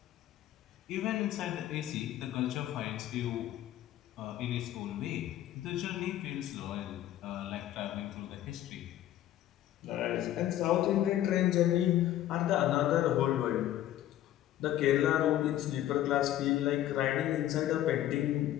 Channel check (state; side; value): quieter; right; 12.9 dB